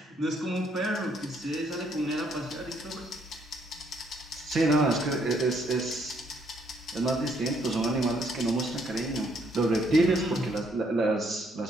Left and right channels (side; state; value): both; normal; correlation 0.70